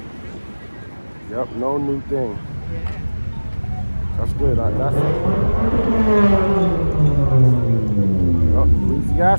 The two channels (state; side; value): inverted; both; correlation -1.00